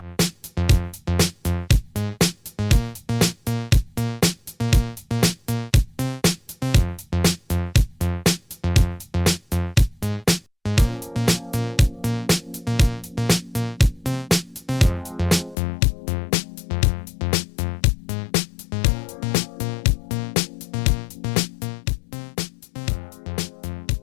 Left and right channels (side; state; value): right; drops out; at 15.6 s